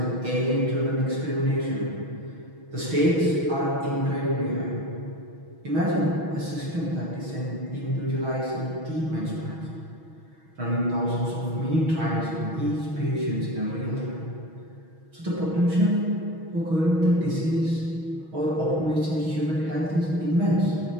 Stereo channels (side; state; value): left; late; 6.3 ms